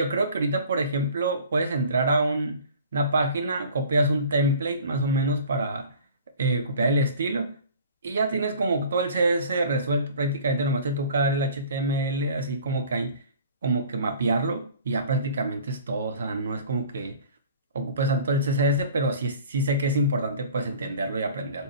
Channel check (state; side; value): inverted; both; correlation -0.47